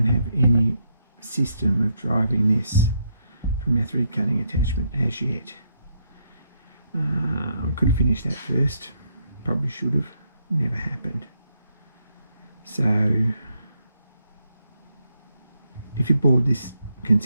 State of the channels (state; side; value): inverted; both; correlation -0.76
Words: have any system of driving this from our thread cutting attachment as yet. I could have finished that first, probably should have, never happened. So if you board this